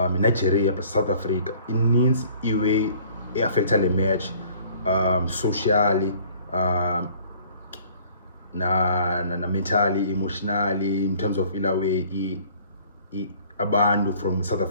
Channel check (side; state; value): both; inverted; correlation -0.55